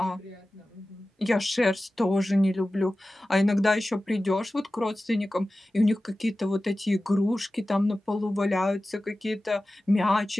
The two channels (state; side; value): normal; both; correlation 0.95